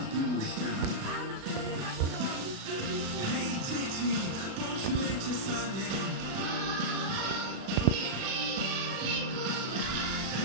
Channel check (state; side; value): late; left; 36 ms